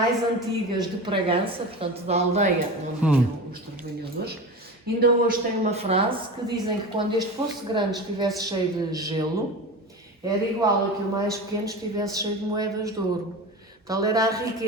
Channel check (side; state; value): both; normal; correlation 0.29